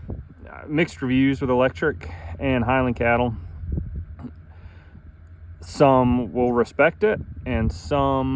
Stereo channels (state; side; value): identical; both; correlation 1.00